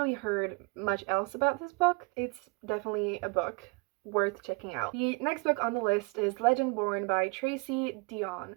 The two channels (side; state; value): left; quieter; 30.4 dB